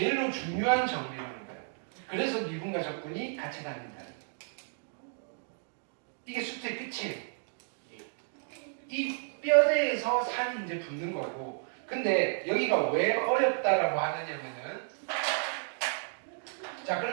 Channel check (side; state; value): left; silent; 56 dB below the other